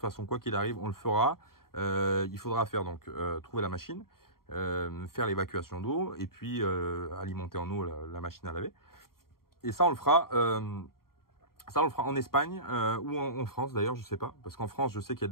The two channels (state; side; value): late; right; 0.93 ms